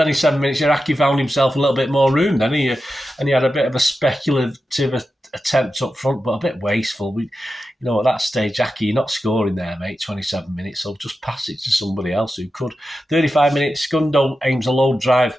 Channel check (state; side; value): normal; both; correlation 0.91